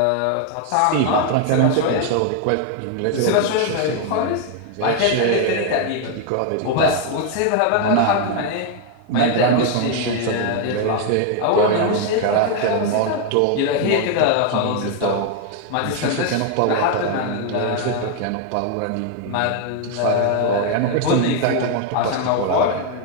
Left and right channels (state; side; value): different; both; correlation 0.01